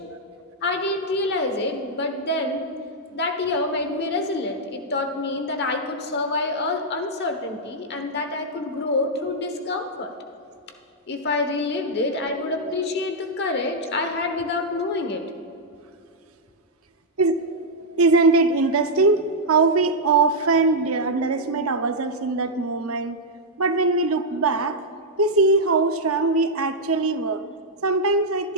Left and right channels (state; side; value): normal; both; correlation -0.04